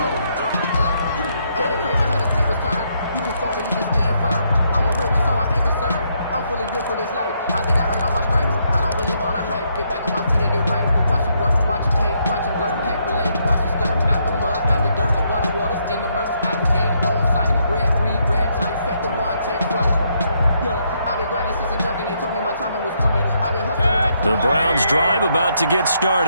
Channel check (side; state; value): both; inverted; correlation -0.75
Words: For this life, I think I earned all my stripes. I don't believe all the hype. Get back on my feet and get right. Watch him work, watch him hate, watch him learn, can't relate. Watch him skirt at the mud, at the dirt, above the waters, in the murks, at the gate, on sight. Red, green, red tight, set the bar, take flight. Yeah, I've been grinding since a young and they told me my timing was coming. I've been hustling. The Browns drive about to get